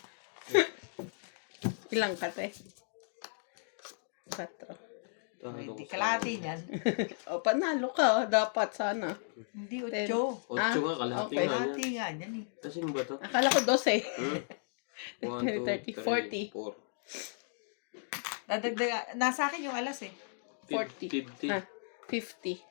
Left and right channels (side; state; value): right; silent; digital silence